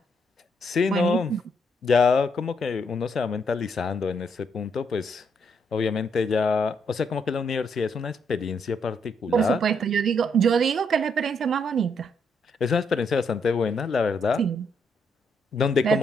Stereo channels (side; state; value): both; normal; correlation 0.74